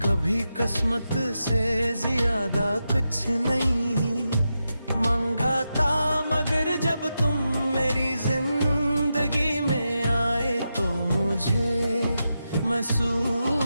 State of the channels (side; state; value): both; inverted; correlation -0.88